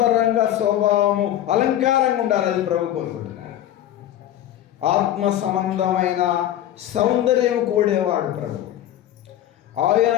స్వభావము అలంకారంగా ఉండాలి. అది ప్రభు కోరుకుంటున్నాడు. ఆత్మ సంబంధమైన సౌందర్యం కోడేవాడు ప్రభు. ఆయన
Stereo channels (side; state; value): right; quieter; 12.1 dB